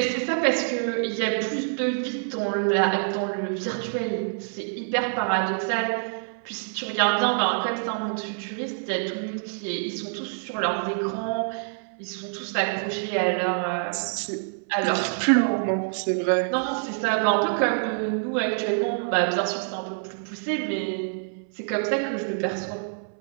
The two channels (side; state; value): left; silent; 61 dB below the other